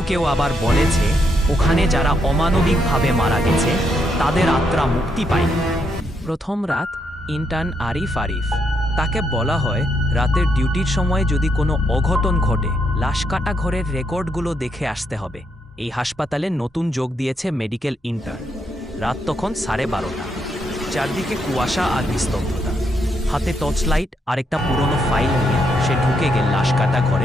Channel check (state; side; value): normal; both; correlation 0.77